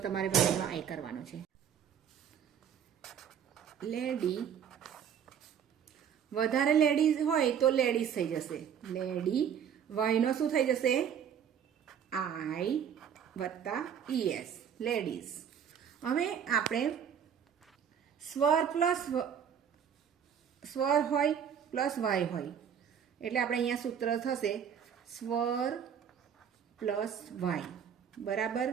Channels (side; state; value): left; quieter; 8.3 dB